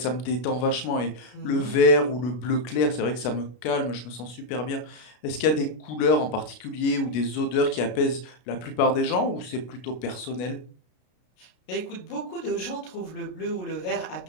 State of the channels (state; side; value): late; right; 33 ms